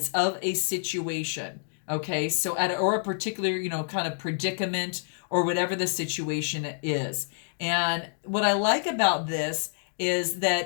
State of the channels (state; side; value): silent; right; digital silence